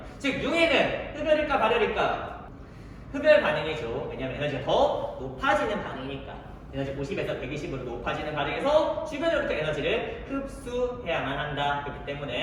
즉 융해는 흡열일까 발열일까? 흡열 반응이죠. 왜냐하면 에너지가 더 높아지는 반응이니까. 에너지 50에서 120으로 높아지는 반응에서 주변으로부터 에너지를 흡수해야만 한다. 그렇기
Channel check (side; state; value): both; identical; correlation 1.00